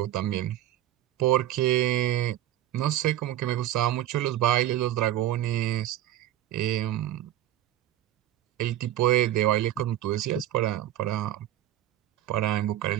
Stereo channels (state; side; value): quieter; left; 13.2 dB